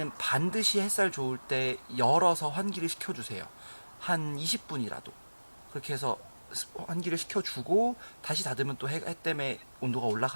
햇살 좋을 때 열어서 환기를 시켜주세요. 한 20분이라도. 그렇게 해서 환기를 시켜주고 다시 닫으면 또 해 때문에 온도가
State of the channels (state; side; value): inverted; both; correlation -1.00